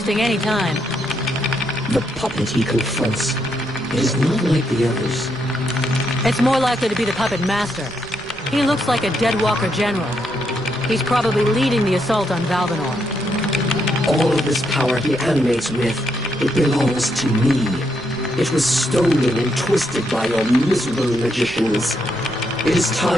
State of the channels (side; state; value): left; noise; rumble, 25 dB below the sound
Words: any time. The puppet he confronts, it is not like the others. It's more likely to be the puppet master. He looks like a dead walker general. He's probably leading the assault on Valvanor. All of this power he animates with, it belongs to me. It was stolen and twisted by your miserable magicians. It is